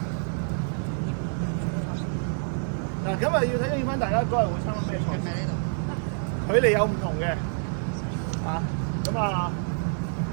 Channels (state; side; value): silent; left; 60 dB below the other